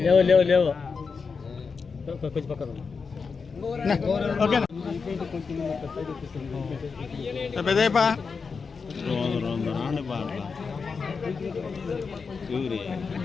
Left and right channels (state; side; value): quieter; right; 5.2 dB